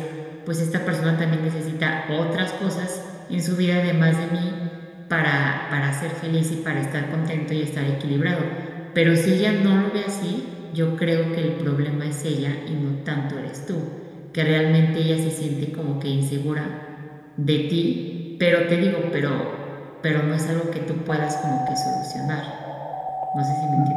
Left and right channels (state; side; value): identical; both; correlation 1.00